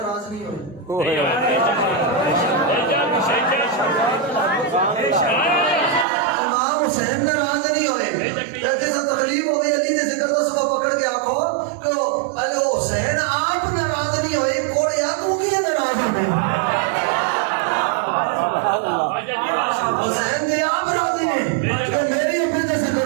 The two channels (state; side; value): drops out; left; at 6.1 s